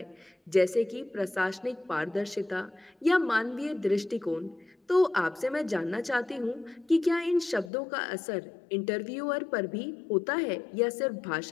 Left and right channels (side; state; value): right; drops out; at 7.7 s